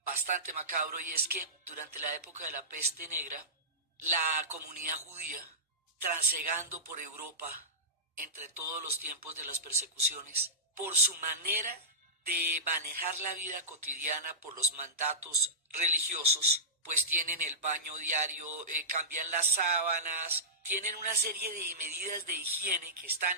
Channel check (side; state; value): both; normal; correlation -0.15